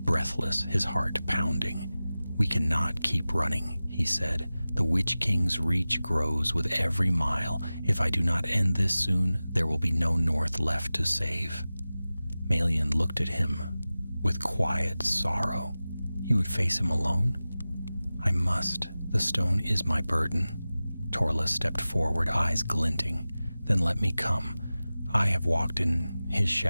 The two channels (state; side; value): inverted; both; correlation -0.96